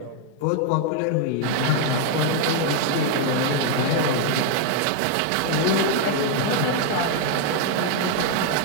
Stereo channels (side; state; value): both; different; correlation 0.01